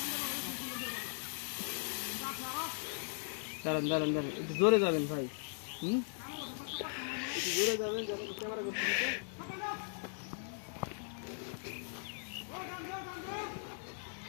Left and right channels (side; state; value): right; silent; 52 dB below the other